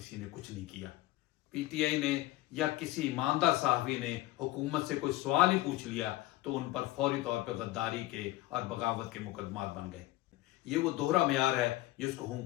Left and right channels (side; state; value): right; quieter; 17.3 dB